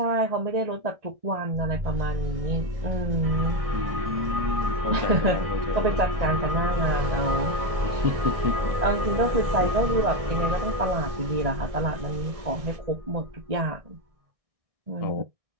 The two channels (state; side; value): late; left; 1.6 ms